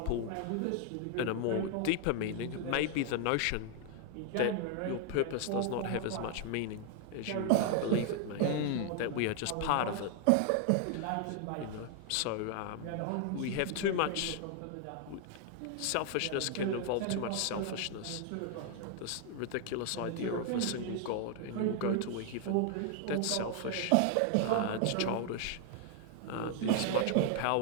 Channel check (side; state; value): both; different; correlation 0.00